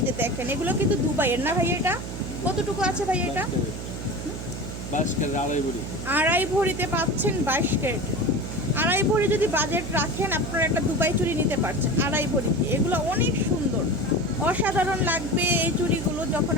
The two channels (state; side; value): noise; right; hum, 8 dB below the sound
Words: যে দেখেন এগুলো কিন্তু দুবাইয়ের না ভাই? এটা কতটুকু আছে ভাই? এটা 22 ক্যারেট আড়াই ভরিতে পাচ্ছেন, 22 ক্যারেট। আড়াই ভরি যদি বাজেট রাখেন আপনারা একটা দুবাই চুড়ি নিতে পারছেন আড়াই ভরি। এগুলো অনেক সুন্দর, অসাধারণ লাগবে এই চুড়িগুলো যখন